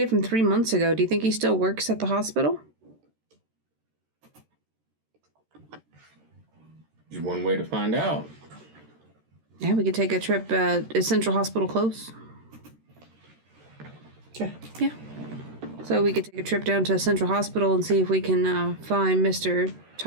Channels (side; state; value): left; late; 13 ms